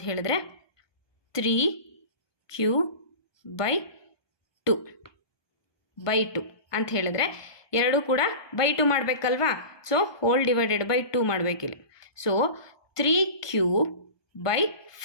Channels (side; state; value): right; late; 1.2 ms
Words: ಹೇಳಿದ್ರೆ 3Q/2 ಅಂತ ಹೇಳಿದ್ರೆ 2 ಕೂಡ /2 ಮಾಡಬೇಕಲ್ವಾ. ಸೊ ಹೋಲ್ ಡಿವೈಡೆಡ್ ಬೈ 2 ಮಾಡಬೇಕಿಲ್ಲಿ. ಸೊ